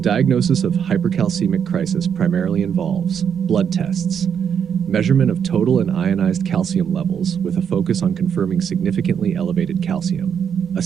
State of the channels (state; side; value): quieter; left; 7.8 dB